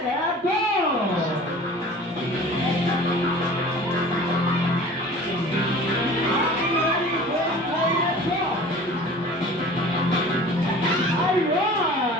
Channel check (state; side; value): normal; both; correlation 0.43